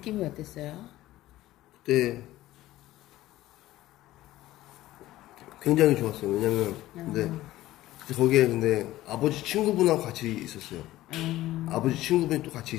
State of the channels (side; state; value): right; quieter; 15.7 dB